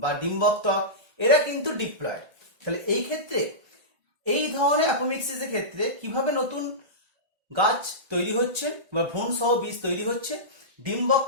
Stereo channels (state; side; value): late; left; 1.6 ms